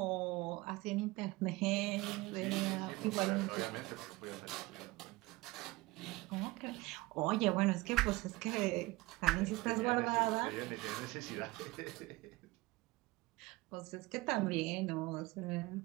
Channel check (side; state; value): left; quieter; 21.2 dB